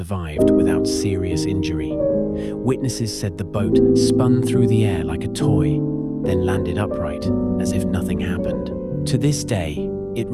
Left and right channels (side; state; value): both; identical; correlation 1.00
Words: without serious injury. Witnesses said the boat spun through the air like a toy, then landed upright as if nothing happened. To this day, it